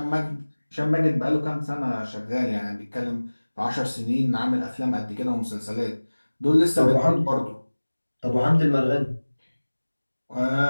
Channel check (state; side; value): inverted; both; correlation -1.00